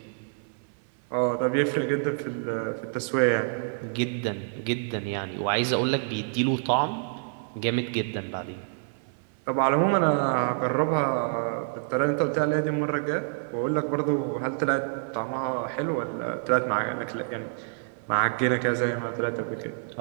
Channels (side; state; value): left; silent; 60 dB below the other